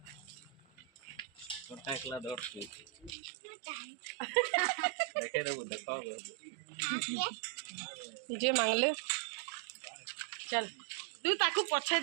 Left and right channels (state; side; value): drops out; left; at 3.2 s